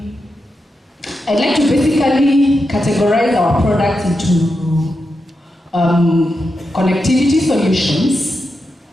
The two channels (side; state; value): both; normal; correlation 0.87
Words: like to basically categorize our products into connectivity solutions,